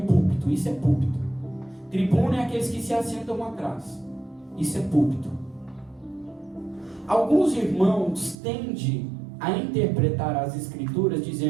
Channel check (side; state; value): left; drops out; at 8.3 s